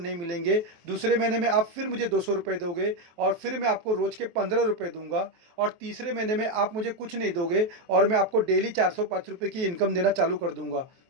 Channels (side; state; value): left; late; 23 ms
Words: मिलेंगे। दूसरे महीने में आप फिर मुझे 200 रुपये दोगे, और फिर मैं आपको रोज़ के 15 रुपये दूंगा। और तीसरे महीने में आप मुझे कुछ नहीं दोगे और मैं आपको डेली 405 रुपये की इनकम देना चालू कर दूंगा।